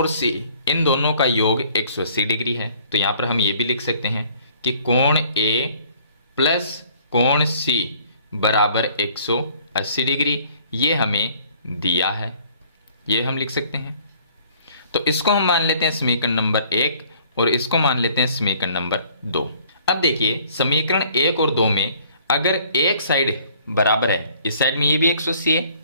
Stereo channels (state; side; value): inverted; both; correlation -0.57